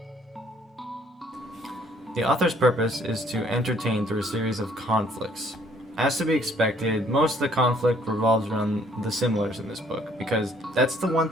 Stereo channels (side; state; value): both; normal; correlation 0.62